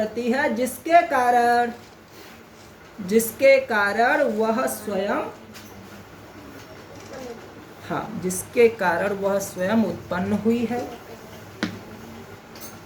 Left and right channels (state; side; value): identical; both; correlation 1.00